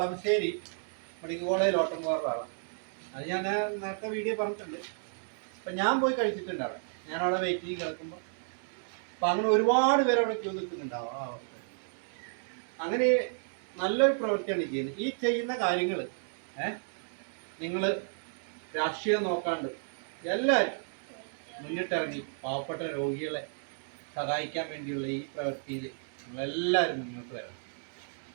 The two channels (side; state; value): left; silent; digital silence